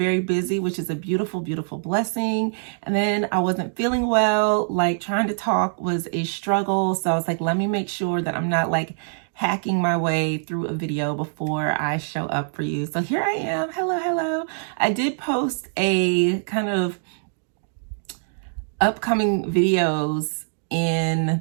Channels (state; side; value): silent; left; digital silence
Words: busy, which is a beautiful, beautiful blessing. And then I wasn't feeling well, like trying to talk was a struggle. So I was like, let me make sure that I'm not like hacking my way through a video before I show up for you. So here I am. Hello, hello. I did post a kind of upcoming videos in